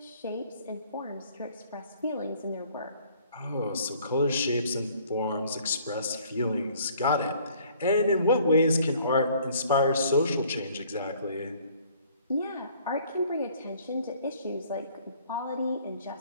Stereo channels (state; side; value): inverted; both; correlation -0.57